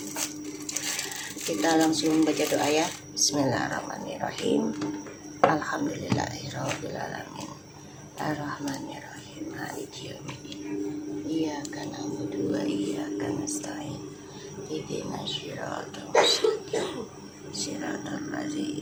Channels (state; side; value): identical; both; correlation 1.00